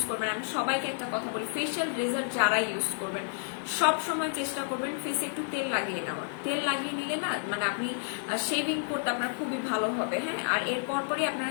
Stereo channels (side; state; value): right; silent; digital silence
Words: করবেন, আমি সবাইকে একটা কথা বলি, ফেশিয়াল রেজার যারা ইউজ করবেন সব সময় চেষ্টা করবেন ফেসে একটু তেল লাগিয়ে নেওয়ার। তেল লাগিয়ে নিলে না মানে আপনি শেভিং করতে আপনার খুবই ভালো হবে, হ্যাঁ। আর এরপর পরই আপনারা